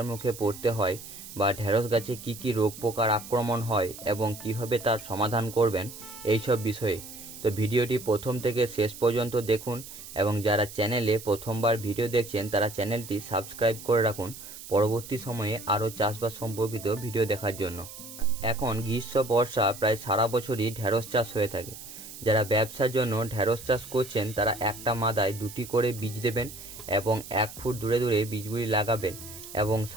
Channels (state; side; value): noise; right; hiss, 14 dB below the sound